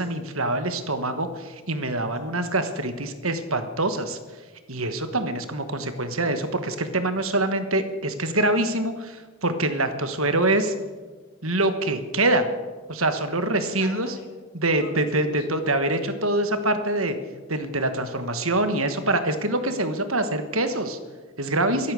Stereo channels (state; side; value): normal; both; correlation -0.08